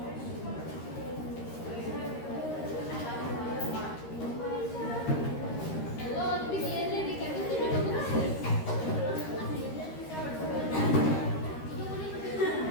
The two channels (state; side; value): late; right; 13 ms